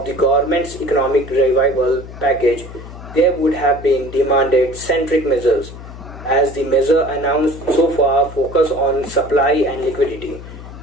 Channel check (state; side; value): noise; left; hum, 14 dB below the sound